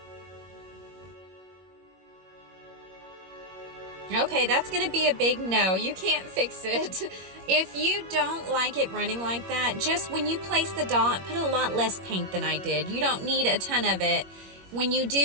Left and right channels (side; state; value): left; late; 21 ms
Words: Okay, that's gonna be a big no. You can't fix it. If you don't like it running like that, just when you place the dot, put a lot less paint than I did. You don't need a ton of it. When you